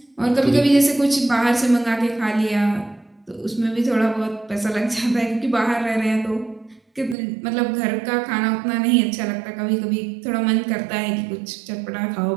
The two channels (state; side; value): drops out; left; at 7.2 s